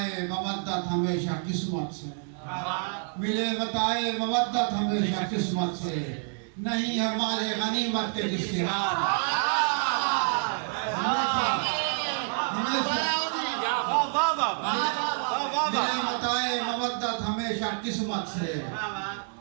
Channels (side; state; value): left; silent; 59 dB below the other